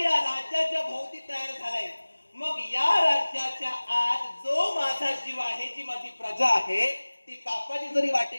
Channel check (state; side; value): inverted; both; correlation -1.00